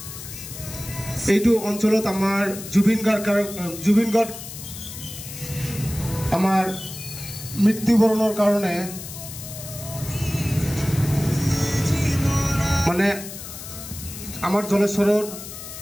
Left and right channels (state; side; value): noise; left; hiss, 11 dB below the sound